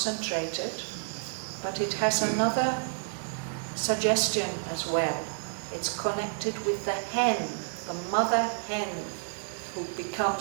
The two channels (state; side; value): silent; left; 58 dB below the other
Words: but it has another suggestion as well. It's connected with the hen, the mother hen, who